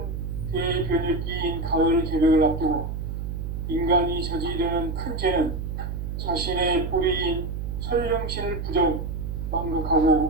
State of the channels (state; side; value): noise; right; hum, 4 dB below the sound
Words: 대변혁기인 가을 개벽을 앞두고 인간이 저지르는 큰 죄는 자신의 뿌리인 설령신을 부정,